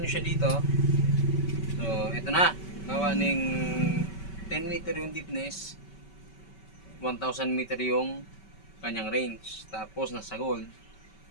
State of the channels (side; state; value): right; late; 5.2 ms